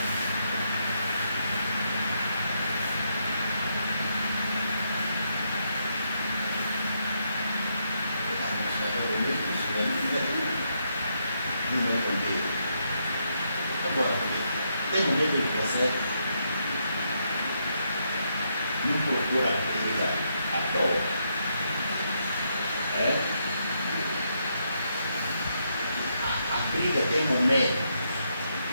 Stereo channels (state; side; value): inverted; both; correlation -0.78